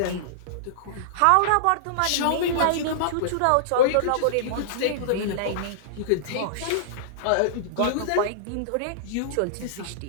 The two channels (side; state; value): both; different; correlation -0.02